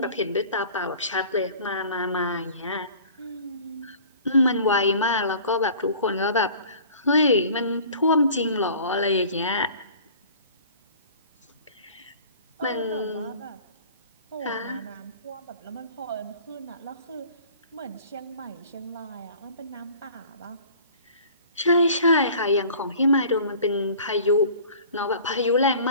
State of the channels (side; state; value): both; inverted; correlation -0.47